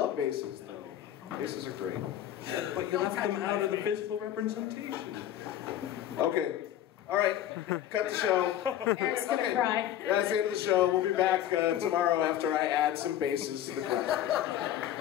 basses though. Basses are great. Yeah, but you left them out of the physical representation. Okay. All right. Cut the show. Eric's gonna cry. That's the end of the show. We'll be back tomorrow after I add some basses to the group.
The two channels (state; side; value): quieter; right; 11.6 dB